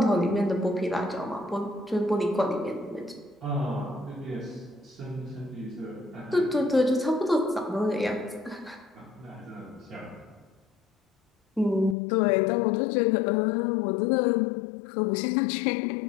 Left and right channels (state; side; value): drops out; right; at 12.0 s